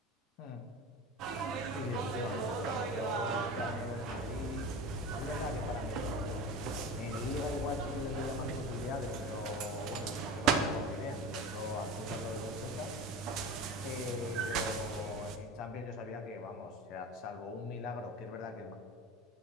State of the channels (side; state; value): both; normal; correlation 0.31